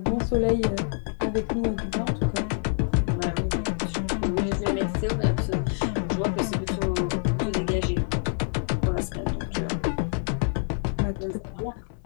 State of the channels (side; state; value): right; silent; digital silence